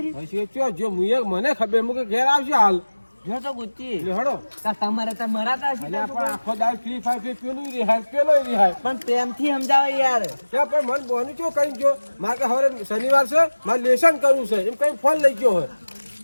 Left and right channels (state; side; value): inverted; both; correlation -1.00